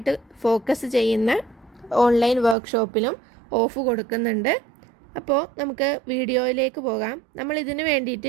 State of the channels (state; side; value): drops out; left; at 2.6 s